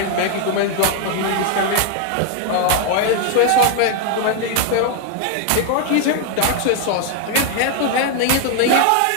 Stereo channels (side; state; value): both; different; correlation 0.00